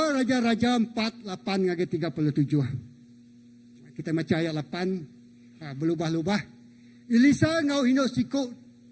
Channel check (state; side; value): identical; both; correlation 1.00